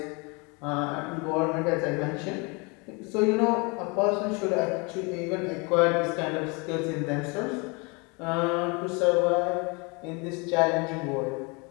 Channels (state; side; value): quieter; right; 29.8 dB